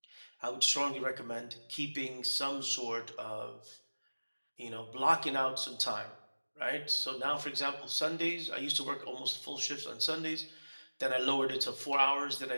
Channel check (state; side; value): inverted; both; correlation -1.00